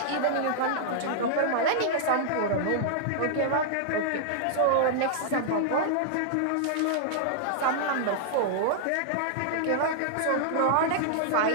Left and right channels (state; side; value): different; both; correlation -0.01